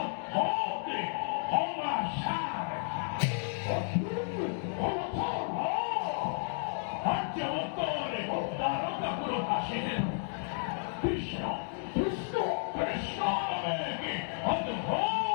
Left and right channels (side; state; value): right; silent; digital silence